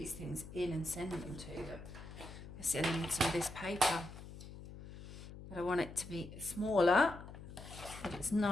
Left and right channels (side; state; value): left; noise; hum, 13 dB below the sound